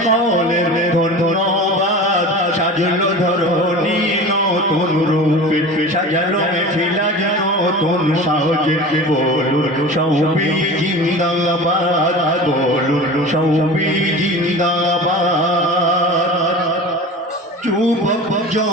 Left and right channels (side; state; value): both; normal; correlation 0.35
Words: ধন্যবাদ। সাজলো ধরণী নতুন রূপে, সাজালো মেফিলা যেন নতুন সাজে। বলুন সবে জিন্দাবাদ, বলুন সবে জিন্দাবাদ। যুবক